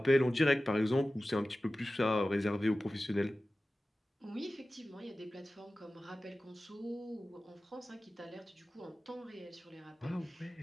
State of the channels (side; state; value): both; normal; correlation 0.96